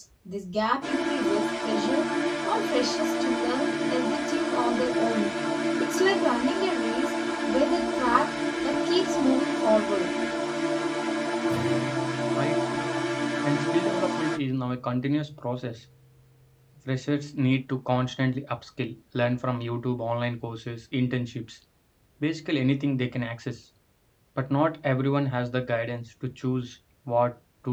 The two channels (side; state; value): both; identical; correlation 1.00